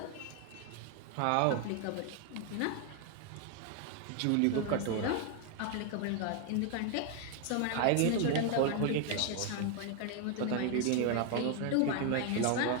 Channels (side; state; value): both; different; correlation 0.01